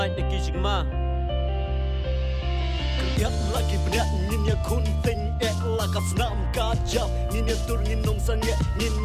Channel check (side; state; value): both; identical; correlation 1.00